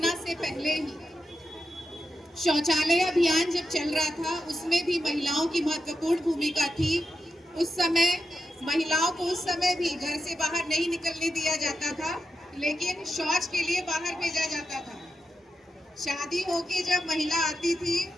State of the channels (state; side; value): normal; both; correlation 0.88